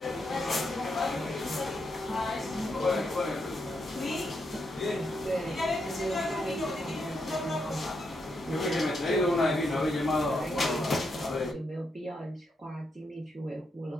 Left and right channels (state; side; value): normal; both; correlation 0.81